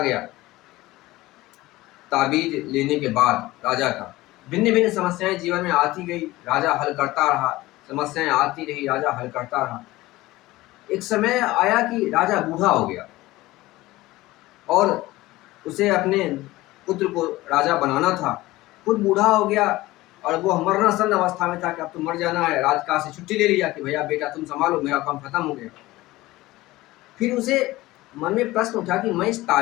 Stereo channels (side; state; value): right; quieter; 18.4 dB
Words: गया। ताबीज लेने के बाद राजा का भिन्न भिन्न समस्याएं जीवन में आती गई। राजा हल करता रहा, समस्याएं आती रही, राजा हल करता रहा। एक समय आया कि राजा बूढ़ा हो गया और उसे अपने पुत्र को राजा बनाना था। खुद बूढ़ा हो गया और वो मरणासन अवस्था में था कि अब तो मर जाना है। राजकाज से छुट्टी ले लिया कि भैया बेटा तुम संभालो, मेरा काम खत्म हो गया। फिर उसे मन में प्रश्न उठा कि मैं इस